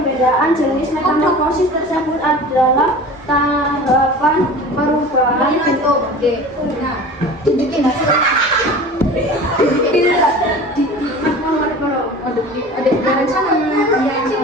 jenis metamorfosis tersebut adalah tahapan perubahan bentuk. Nah, tunjukin hasil. Ada rencana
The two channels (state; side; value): normal; both; correlation 0.38